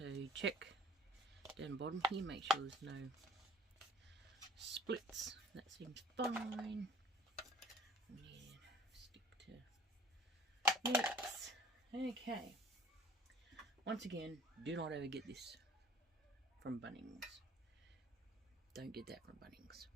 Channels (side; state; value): both; normal; correlation 0.48